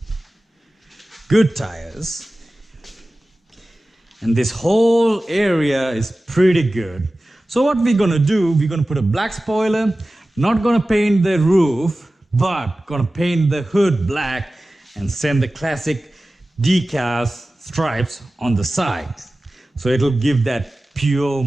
good tires. And this whole area is pretty good. So what we're gonna do, we're gonna put a black spoiler, not gonna paint the roof, but gonna paint the hood black and send the classic decals stripes on the side. So it'll give that pure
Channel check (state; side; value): normal; both; correlation 0.96